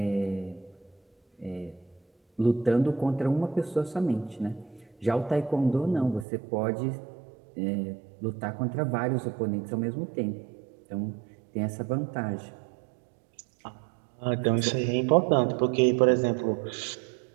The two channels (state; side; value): drops out; left; at 6.2 s